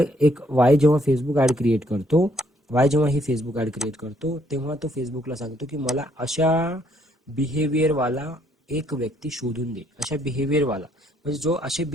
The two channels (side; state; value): both; normal; correlation 0.69